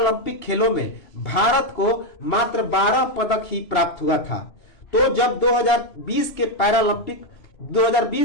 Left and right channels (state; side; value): late; right; 3.0 ms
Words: खेलों में भारत को मात्र 12 पदक ही प्राप्त हुआ था। तो जब 2020